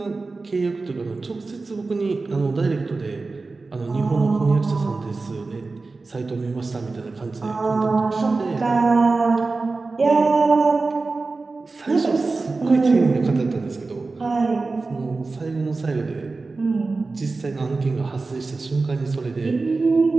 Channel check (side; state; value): left; quieter; 3.7 dB